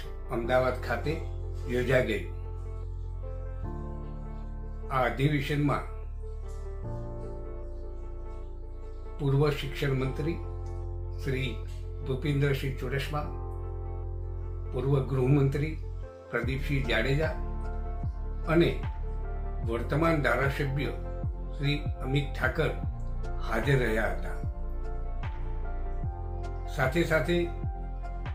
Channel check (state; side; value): identical; both; correlation 1.00